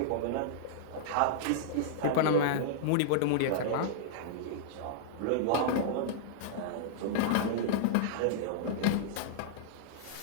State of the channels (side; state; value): both; different; correlation -0.02